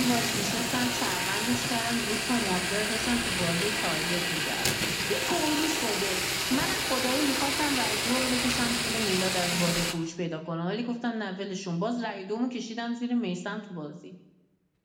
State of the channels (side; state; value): both; identical; correlation 1.00